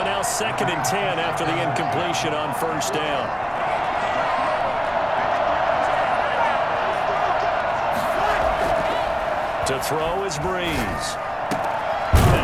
now 2nd and 10 after the incompletion on 1st down. To throw is Breeze.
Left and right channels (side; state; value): both; identical; correlation 1.00